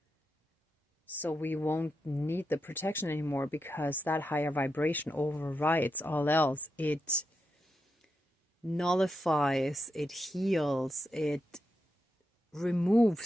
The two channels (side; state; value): both; normal; correlation 0.86